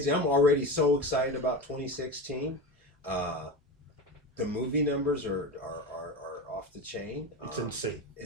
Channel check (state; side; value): normal; both; correlation 0.24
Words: I'm already so excited about 2016. The movie numbers are off the chain. It's insane.